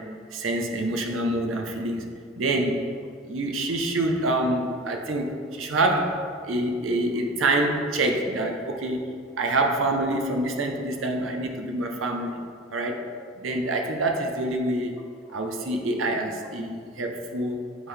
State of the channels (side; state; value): both; normal; correlation 0.33